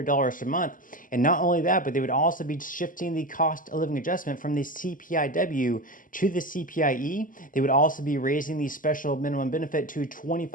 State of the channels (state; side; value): late; right; 0.39 ms